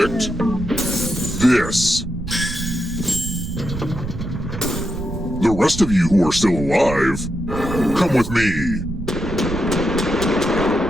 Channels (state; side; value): noise; right; rumble, 8 dB below the sound